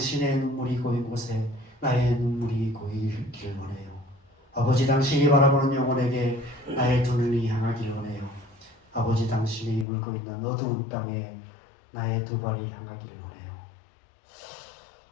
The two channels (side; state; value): right; drops out; at 9.9 s